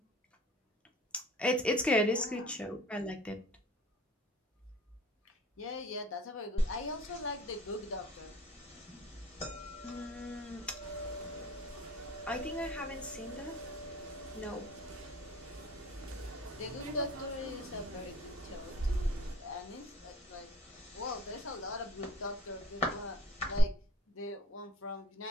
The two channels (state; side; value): normal; both; correlation 0.46